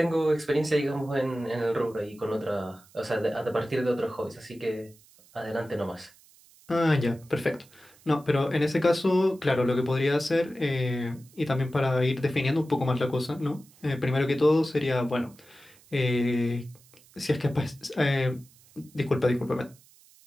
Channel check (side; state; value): right; noise; hiss, 27 dB below the sound